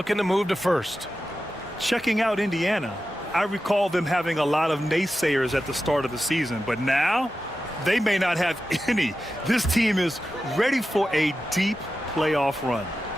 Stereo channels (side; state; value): both; normal; correlation 0.92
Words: to move to first. Checking out Indiana, I recall them having a lot of naysayers at the start of the season, but now they may not have any. This team is ready for a deep playoff run.